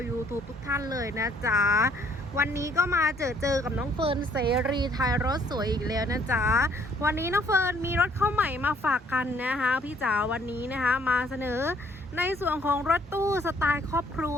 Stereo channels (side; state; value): both; normal; correlation 0.63